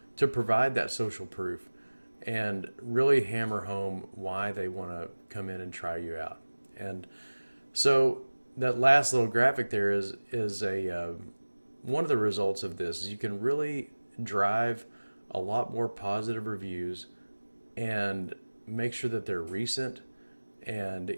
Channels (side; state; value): both; inverted; correlation -1.00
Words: to provide that social proof and really hammer home why they want to come in and try you out. And so that last little graphic there is one of the results of this. Is you can really drive a lot more positive reviews and make sure that they're recent, and